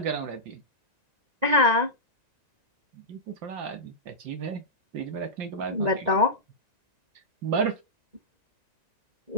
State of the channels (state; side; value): late; left; 1.9 ms